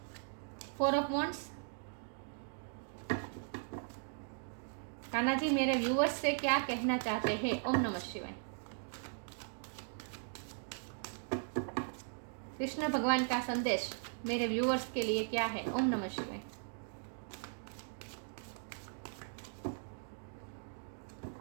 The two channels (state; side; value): silent; left; digital silence